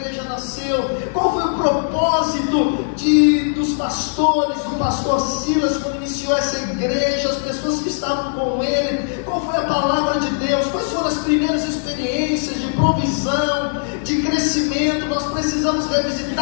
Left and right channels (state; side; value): silent; right; digital silence